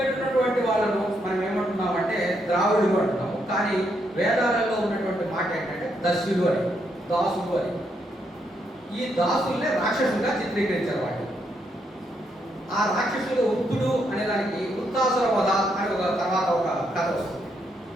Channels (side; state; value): both; normal; correlation 0.77